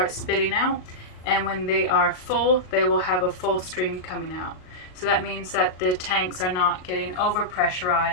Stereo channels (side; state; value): right; late; 38 ms